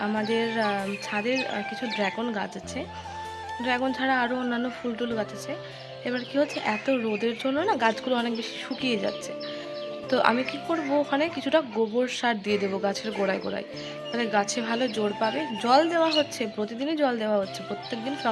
আমাদের ছাদের কিছু ড্রাগন গাছ আছে। ড্রাগন ছাড়া আরও অন্যান্য ফুল টুল গাছ আছে। এবার কি হচ্ছে, এত রোদের জন্য না গাছগুলো অনেক বেশি শুকিয়ে যাচ্ছে। তো আমি কি করব, ওখানে কিছুটা গোবর সার দিয়ে দেবো গাছের গোড়ায় গোড়ায়, তাহলে গাছে ভালো জোর পাবে। জল দেওয়া হচ্ছে, প্রতিদিনই জল দেওয়া হচ্ছে, প্রত্যেকদিন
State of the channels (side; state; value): both; identical; correlation 1.00